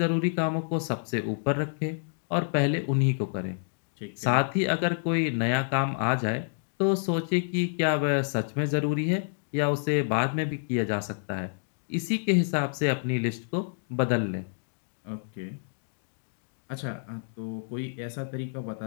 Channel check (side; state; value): right; silent; digital silence